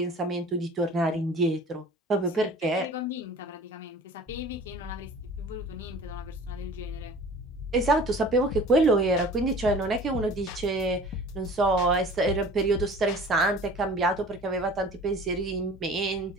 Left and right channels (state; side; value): normal; both; correlation 0.44